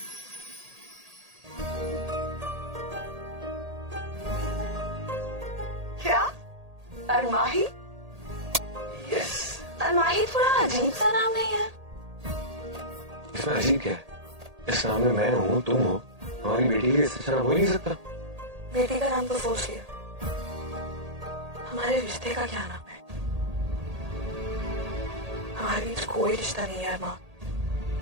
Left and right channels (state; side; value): late; left; 1.8 ms